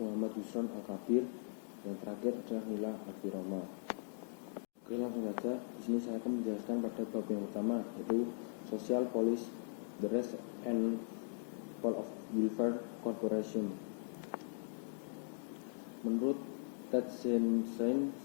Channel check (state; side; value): silent; right; digital silence